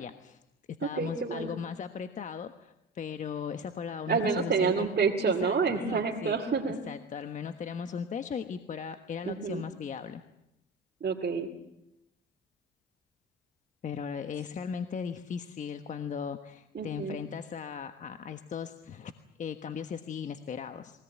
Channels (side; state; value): both; normal; correlation 0.30